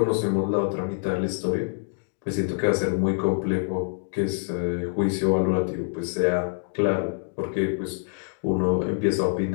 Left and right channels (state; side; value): silent; right; digital silence